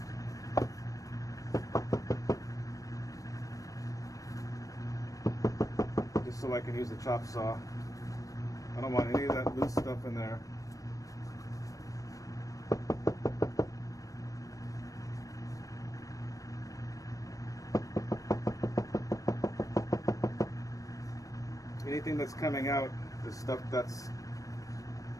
Just so I can use the chop saw. I don't want any of that loose stuff in there. Anything that's coming out is stuff that's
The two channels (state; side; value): late; right; 0.16 ms